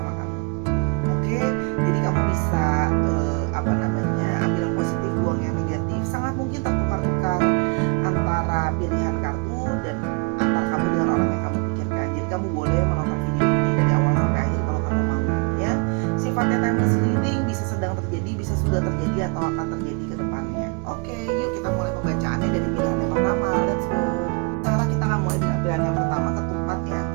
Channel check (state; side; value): quieter; left; 31.6 dB